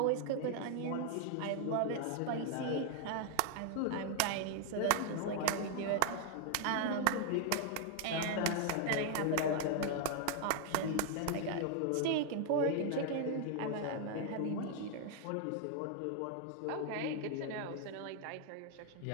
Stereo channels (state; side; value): different; both; correlation 0.00